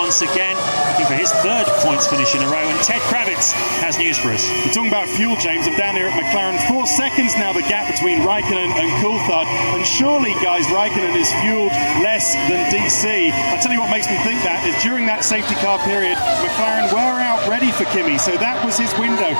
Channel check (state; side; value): inverted; both; correlation -1.00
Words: again, looking for his 3rd points finish in a row. And Ted Kravitz has news for us. We're talking about fuel, James. I'm down here at McLaren. 4 seconds now, the gap between Raikkonen and Coulthard. And surely, guys, Raikkonen is fueled less than DC. I'll tell you what makes me think that is during that safety car period, McLaren were out ready for Kimi. So that was his window.